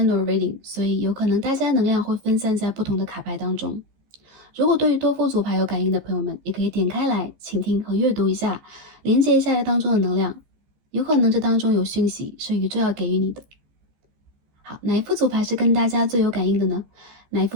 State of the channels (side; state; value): left; late; 15 ms